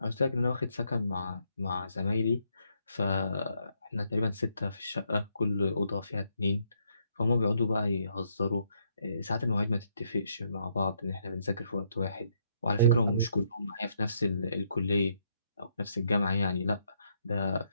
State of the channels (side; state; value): both; inverted; correlation -0.73